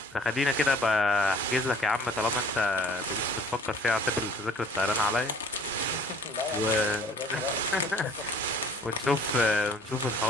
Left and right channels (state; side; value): normal; both; correlation 0.54